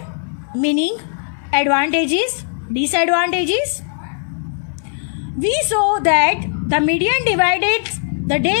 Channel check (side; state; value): right; silent; digital silence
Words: meaning, advantages, disadvantages. We saw that the median divided the